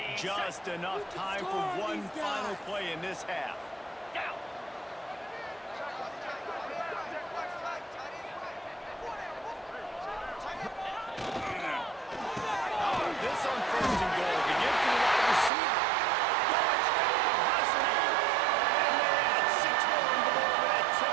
Just enough time for one final play in this half. This on first and goal. To give to the wide receiver. Touchdown, Husky. And they add 6 more on the board with that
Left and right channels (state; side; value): drops out; left; at 15.5 s